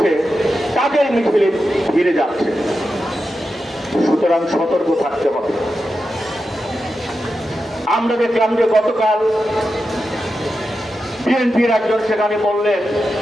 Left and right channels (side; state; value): both; normal; correlation 0.90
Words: তাদের মিছিলে ফিরে যাচ্ছে। সুতরাং সতর্ক থাকতে হবে। আমরা দেখলাম যে গতকাল বিএনপির একজন সেখানে বললেন